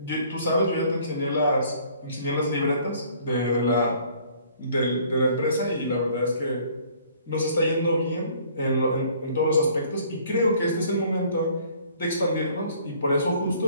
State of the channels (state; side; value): inverted; both; correlation -0.57